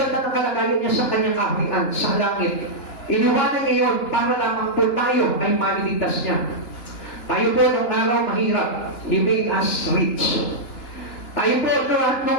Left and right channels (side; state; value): right; late; 2.9 ms